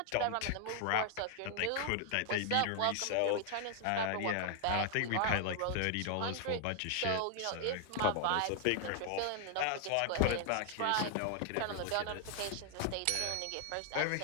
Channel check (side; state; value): both; different; correlation 0.00